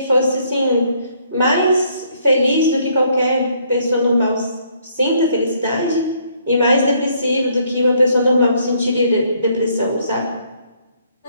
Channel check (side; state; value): both; inverted; correlation -0.67